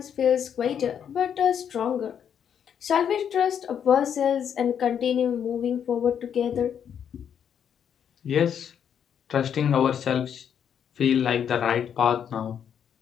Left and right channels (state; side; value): quieter; right; 8.4 dB